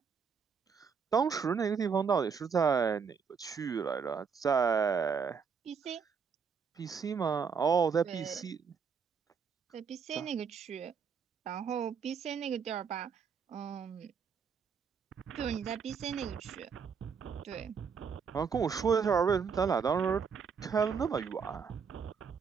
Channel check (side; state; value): left; quieter; 6.2 dB